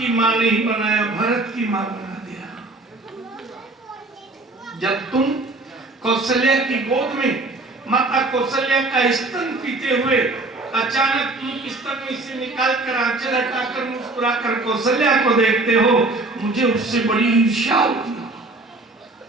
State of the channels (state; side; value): quieter; left; 3.0 dB